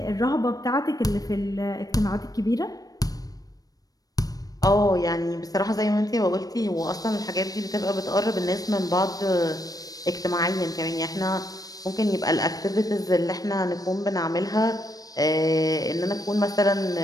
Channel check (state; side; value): late; right; 0.18 ms